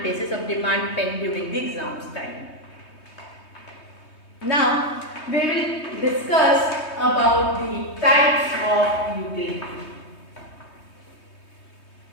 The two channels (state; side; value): late; right; 3.2 ms